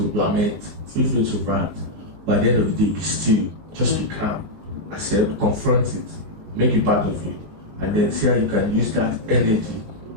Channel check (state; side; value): late; left; 20 ms